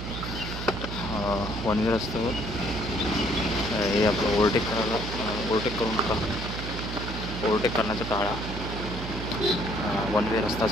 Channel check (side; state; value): right; noise; hum, 6 dB below the sound